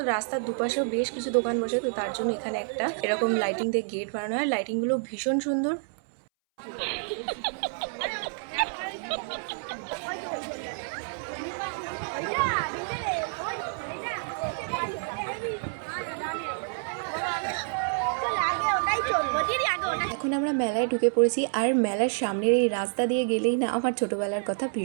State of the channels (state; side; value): silent; left; 59 dB below the other